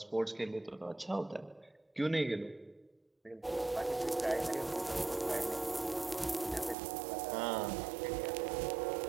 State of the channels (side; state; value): left; drops out; at 6.8 s